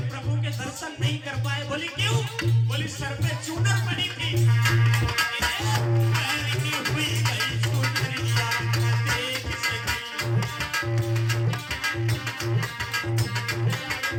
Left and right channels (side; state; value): both; identical; correlation 1.00